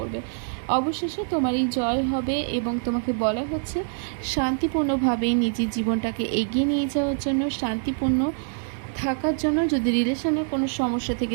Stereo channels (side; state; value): left; silent; digital silence